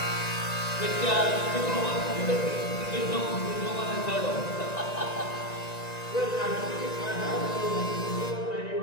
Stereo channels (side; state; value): right; late; 1.9 ms